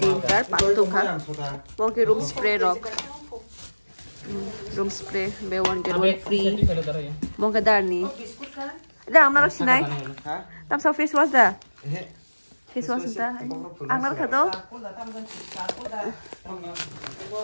3 4 5 tủ khác. Bon cái room spray rock. Room spray be one get one free. Bon cái dar ni. Ada amna rak sinai. Hả? Tam sa face wash da. Face wash da. Amna rak do.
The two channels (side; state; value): both; inverted; correlation -1.00